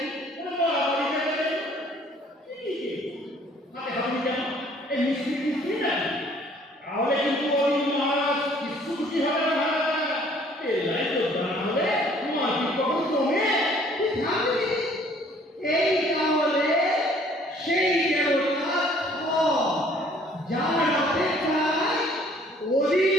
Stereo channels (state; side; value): normal; both; correlation 0.58